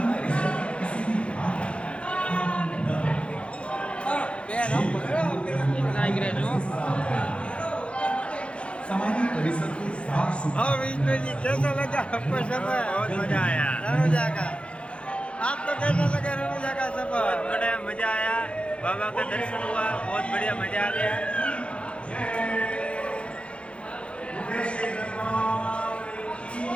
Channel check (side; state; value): right; late; 0.059 ms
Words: हाँ विष्णु जी, कैसा लगा आपको सफर? बहुत मजा आया रनुजा का। आपको कैसा लगा रनुजा का सफर? बहुत बड़ा मजा आया, बाबा का दर्शन हुआ, बहुत बढ़िया मजा आ गया।